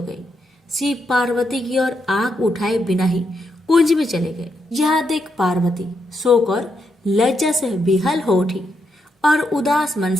गई। शिव पार्वती की ओर आंख उठाए बिना ही कुंज में चले गए। यह देख पार्वती शोक और लज्जा से विहल हो उठी और उदास मन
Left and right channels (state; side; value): normal; both; correlation 0.81